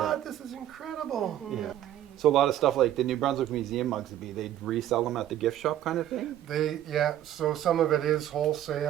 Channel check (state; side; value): quieter; left; 12.1 dB